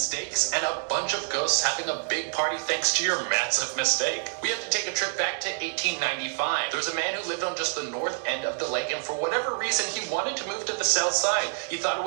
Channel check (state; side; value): silent; left; digital silence